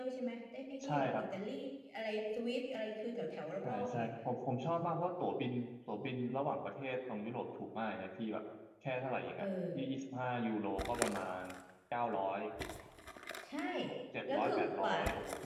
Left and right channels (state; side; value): identical; both; correlation 1.00